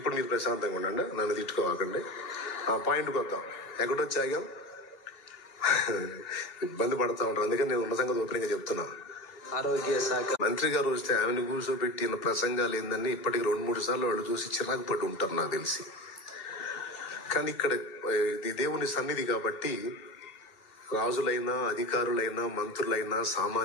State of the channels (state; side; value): late; right; 2.6 ms